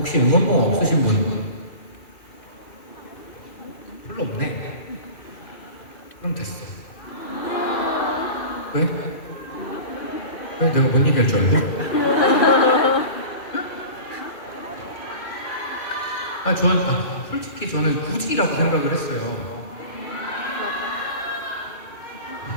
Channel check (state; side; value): late; right; 2.5 ms